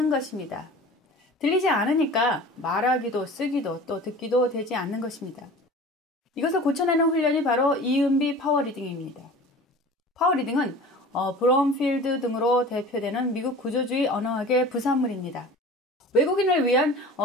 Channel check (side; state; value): both; normal; correlation 0.40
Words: 것입니다. 들리지 않으니까 말하기도 쓰기도 또 듣기도 되지 않는 것입니다. 이것을 고쳐내는 훈련이 바로 이은비 파워리딩입니다. 파워리딩은 브롬필드 등으로 대표되는 미국 구조주의 언어학의 부산물입니다. 외국인을 위한